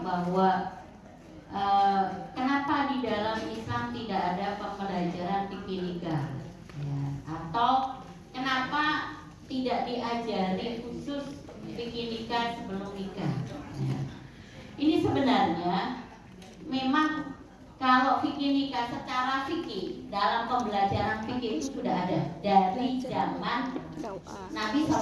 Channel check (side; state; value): both; identical; correlation 1.00